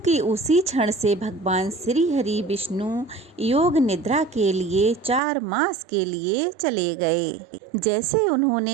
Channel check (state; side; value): drops out; left; at 5.2 s